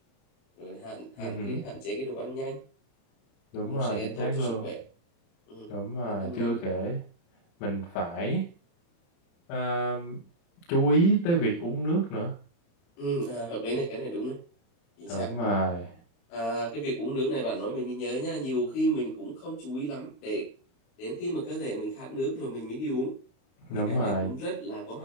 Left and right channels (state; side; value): late; right; 35 ms